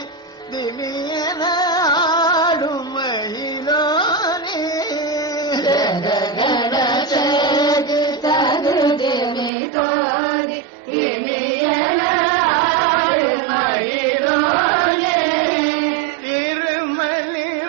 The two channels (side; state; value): left; drops out; at 9.5 s